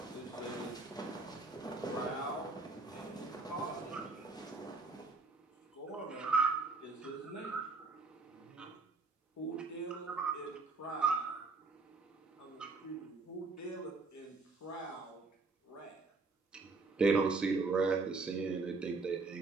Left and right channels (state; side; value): quieter; left; 3.9 dB